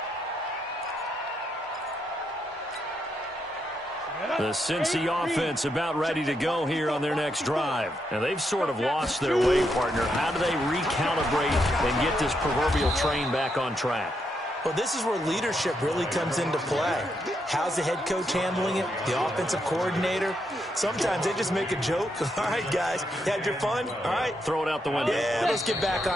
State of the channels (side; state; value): both; normal; correlation 0.80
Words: The Cincy offense about ready to go here on their next drive. And they've sort of lost their way, partner. How do they recalibrate and get this proverbial train back on track? Well, this is where leadership really comes into play. How's the head coach handling it? The offensive coordinator? Sometimes they just make a joke. All right, guys, had your fun? All right. Throw it out the window. Yeah, let's get back